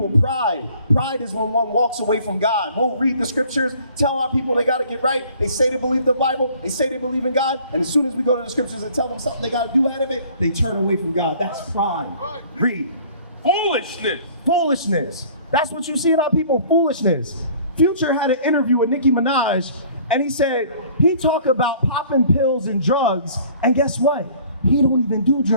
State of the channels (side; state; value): both; inverted; correlation -0.53